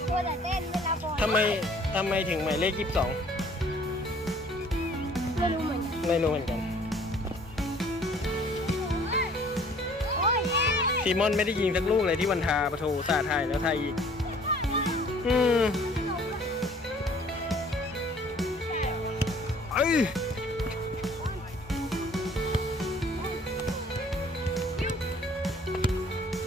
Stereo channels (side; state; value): both; normal; correlation 0.55